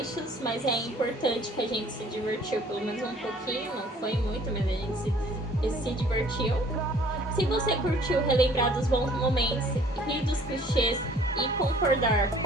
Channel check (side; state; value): both; normal; correlation 0.55